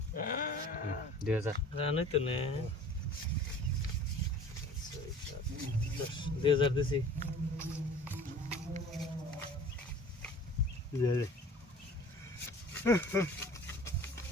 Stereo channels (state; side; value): normal; both; correlation 0.45